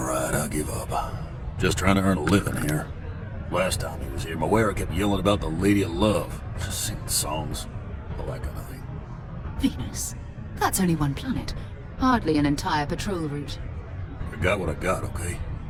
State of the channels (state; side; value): identical; both; correlation 1.00